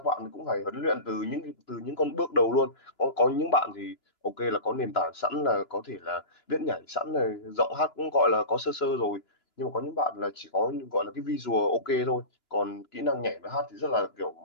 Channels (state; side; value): late; right; 2.9 ms